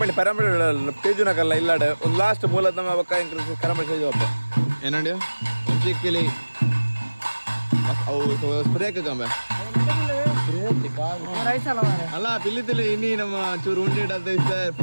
ಪೇಜುನಕಲ್ಲ ಇಲ್ಲಾಡ ಒಂದು ಲಾಸ್ಟ್ ಮೂಲದ ನಮ್ಮ ಬಕ್ಕ ಎಂಕಲ್ ಕರಂಬಳಿ ಸೇಜು ಅಪ್ಪ ಏನಂಡಿ ಒಂಚಿ ಪಿಲಿ ಅವು ಸ್ಪ್ರೇಕ್ ಕಂಬೆ ಅಲ್ಲ ಪಿಲ್ಲಿತಿಲ್ಲ ಇನ್ನಿ ನಮ್ಮ ಚೂರು ಉಂಡೆ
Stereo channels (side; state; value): both; inverted; correlation -1.00